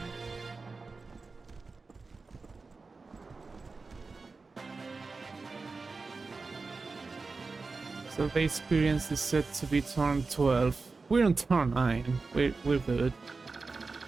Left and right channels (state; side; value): quieter; left; 4.1 dB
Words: So the experience is set to be turn 12. We're on turn 9. We're good.